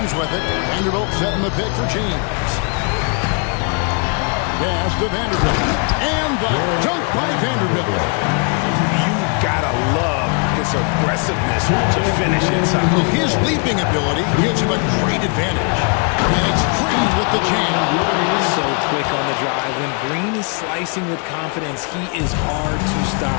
with it. Vanderbilt setting the pick for James. Pass to Vanderbilt. And the dunk by Vanderbilt. Gotta love his aggressiveness to finish inside. Well, his leaping ability gives him a great advantage. And it's Green with the jam. So quick on the drive. When Green is slicing with confidence, he is hard to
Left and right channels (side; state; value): right; quieter; 38.4 dB